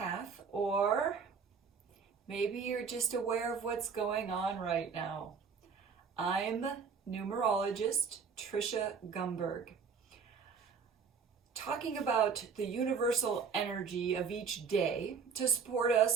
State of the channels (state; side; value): quieter; left; 5.9 dB